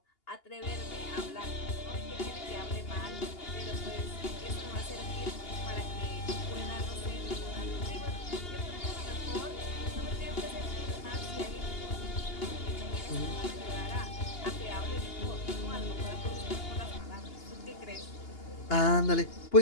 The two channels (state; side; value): late; right; 2.8 ms